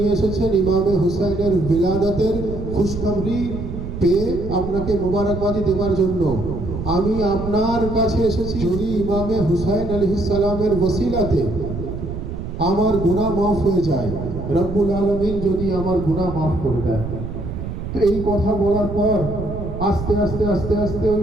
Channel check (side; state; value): right; noise; rumble, 7 dB below the sound